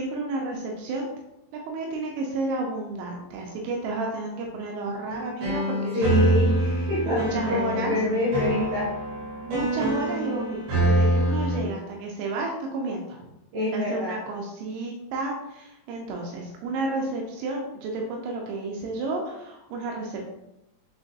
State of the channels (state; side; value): late; left; 22 ms